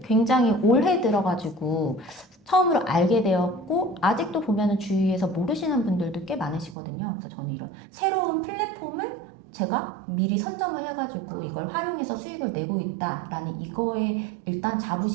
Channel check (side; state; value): left; drops out; at 6.8 s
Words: 굉장히 올해 들어가지고 처음으로 알게 되었고 아직도 보면은 주위에서 모르시는 분들도 꽤 많으시거든요. 그래서 저는 이런 새로운 플랫폼을 제가 미리 선점을 해가지고 이걸 활용해서 수익을 내고 있다라는 이거에 일단